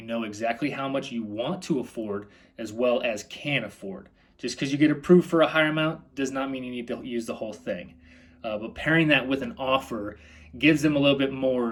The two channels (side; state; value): both; identical; correlation 1.00